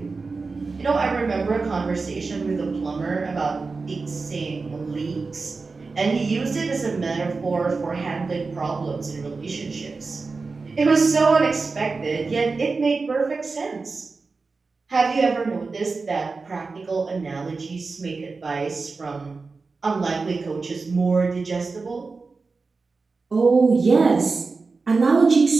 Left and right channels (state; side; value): quieter; left; 4.2 dB